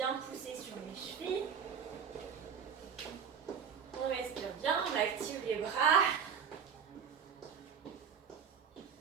pousser sur les chevilles. On respire bien, on active les bras.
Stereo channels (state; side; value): quieter; left; 7.0 dB